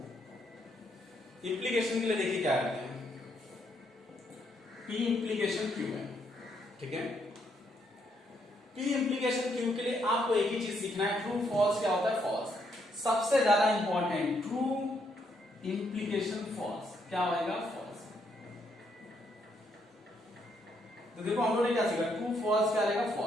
इंप्लीकेशन के लिए देखिए क्या करते हैं, P इंप्लीकेशन Q है, ठीक है। P इंप्लीकेशन Q के लिए आपको एक ही चीज सीखना है, ट्रू फॉल्स क्या होता है, फॉल्स। सबसे ज्यादा इंपॉर्टेंट, ट्रू इंप्लीकेशन फॉल्स क्या होगा, फॉल्स। तो देखो हम लोगों ने क्या सीखा, ट्रू फॉल्स क्या रहेगा,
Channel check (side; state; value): both; normal; correlation 0.74